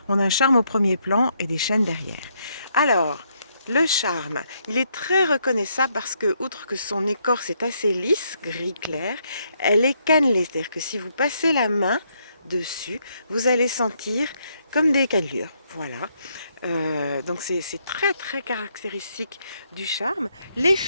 on a un charme au premier plan et des chênes derrière. Alors, le charme, il est très reconnaissable parce que, outre que son écorce est assez lisse, gris clair, elle est cannelée. C'est-à-dire que si vous passez la main dessus, vous allez sentir comme des cannelures. Voilà. Donc c'est très très caractéristique du charme. Les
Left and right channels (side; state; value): both; inverted; correlation -0.74